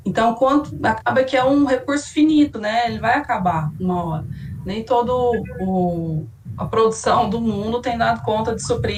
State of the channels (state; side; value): identical; both; correlation 1.00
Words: Então, acaba que é um recurso finito, né? Ele vai acabar uma hora. Nem toda a produção do mundo tem dado conta de